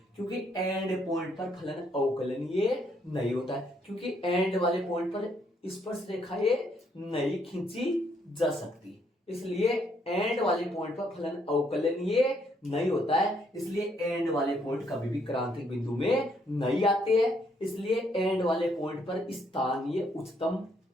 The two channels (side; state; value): both; normal; correlation 0.71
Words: क्योंकि एंड पॉइंट पर फलन अवकलनीय नहीं होता है, क्योंकि एंड वाले पॉइंट पर स्पर्श रेखाएं नहीं खींची जा सकती, इसलिए एंड वाले पॉइंट पर फलन अवकलनीय नहीं होता है, इसलिए एंड वाले पॉइंट कभी भी क्रांतिक बिंदु में नहीं आते हैं। इसलिए एंड वाले पॉइंट पर स्थानीय उच्चतम